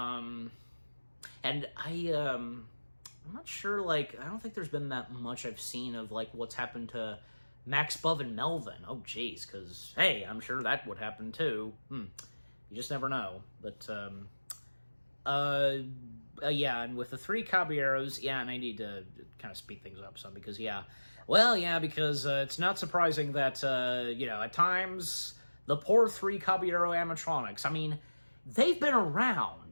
I'm not sure, like, I don't think there's been that much I've seen of, like, what's happened to Max, Bub, and Melvin. Oh, jeez, because, hey, I'm sure that would happen, too. You just never know. But, yeah, and with the 3 Caballeros, yeah, and I need to kind of speed things up some, because, yeah, well, yeah, because it's not surprising that, you know, at times, the poor 3 Caballero animatronics, I mean, they've been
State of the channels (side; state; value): both; inverted; correlation -1.00